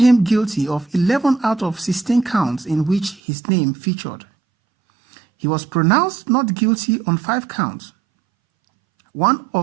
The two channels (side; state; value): left; drops out; at 3.2 s